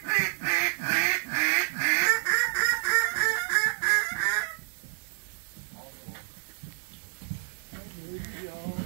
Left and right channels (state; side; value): silent; left; digital silence